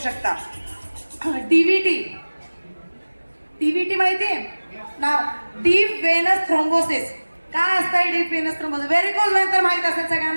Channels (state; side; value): inverted; both; correlation -1.00